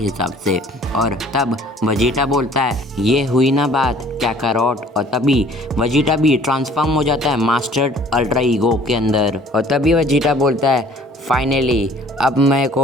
से। और तब वजीटा बोलता है ये हुई ना बात कैकारोट। और तभी वजीटा भी ट्रांसफॉर्म हो जाता है मास्टर्ड अल्ट्रा ईगो के अंदर। और तभी वजीटा बोलता है फाइनली अब मेरे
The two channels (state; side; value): normal; both; correlation 0.53